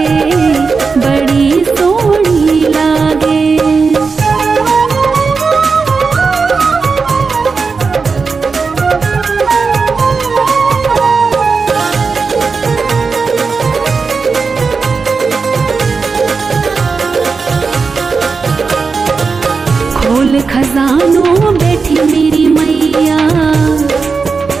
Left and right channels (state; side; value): quieter; left; 4.8 dB